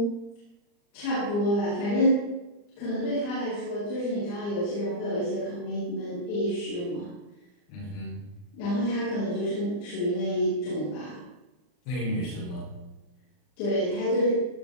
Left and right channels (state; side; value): late; right; 39 ms